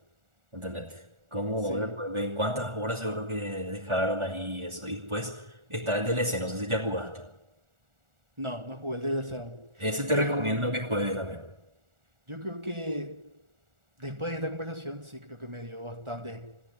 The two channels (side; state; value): left; late; 1.4 ms